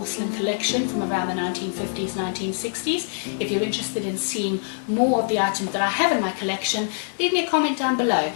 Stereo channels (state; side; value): silent; right; digital silence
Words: collection from around the 1950s, 1960s. If you're interested in seeing more of the items that I have in my collection, leave me a comment down below